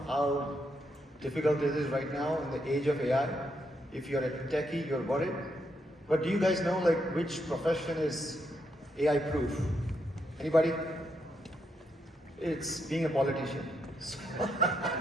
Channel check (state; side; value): normal; both; correlation 0.79